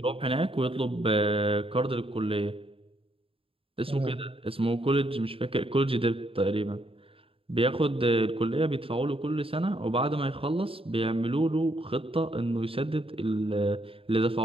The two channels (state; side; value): late; left; 0.27 ms